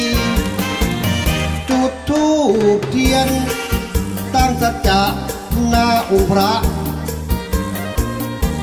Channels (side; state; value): both; identical; correlation 1.00